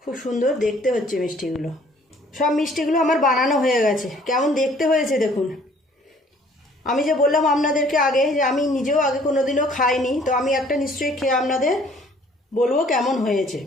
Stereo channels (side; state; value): both; normal; correlation 0.57